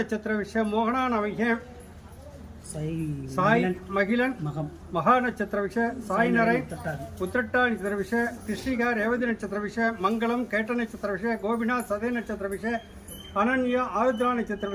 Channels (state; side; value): identical; both; correlation 1.00